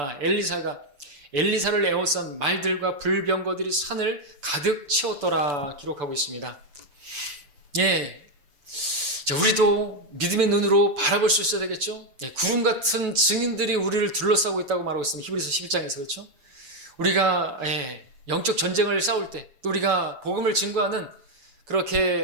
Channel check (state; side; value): late; left; 6.9 ms